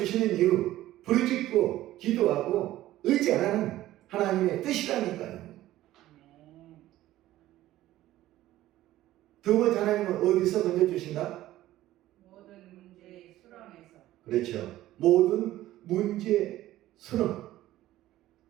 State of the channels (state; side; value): quieter; left; 14.9 dB